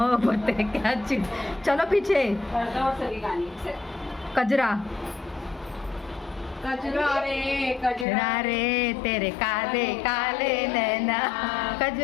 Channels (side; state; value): right; drops out; at 8.1 s